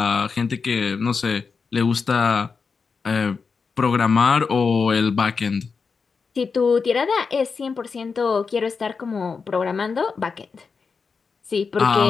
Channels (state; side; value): quieter; right; 5.2 dB